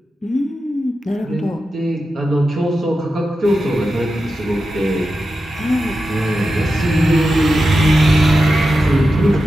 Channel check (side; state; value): both; normal; correlation 0.91